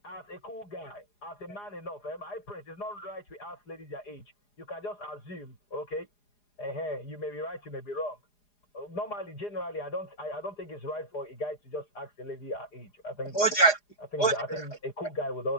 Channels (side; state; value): right; late; 4.9 ms